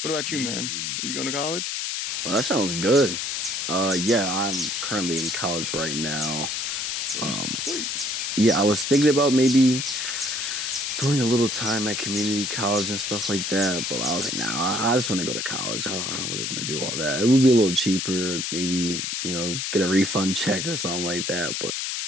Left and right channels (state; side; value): noise; left; hiss, 2 dB below the sound